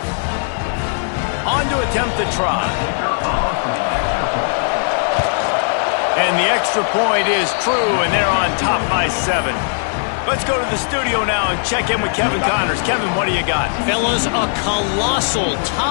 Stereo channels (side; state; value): right; silent; 61 dB below the other